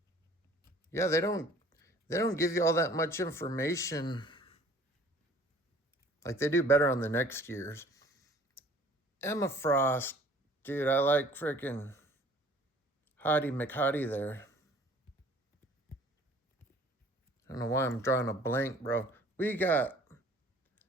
Yeah, they don't give you all that much information. Like they do better on the next year's. Emma Frost, dude, I like freaking Hottie McHottie there. I don't know why I'm drawing a blank, bro. We got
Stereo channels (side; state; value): both; normal; correlation 0.52